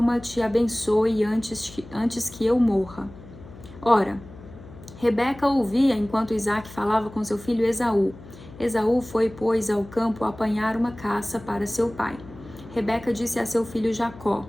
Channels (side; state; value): left; noise; hum, 18 dB below the sound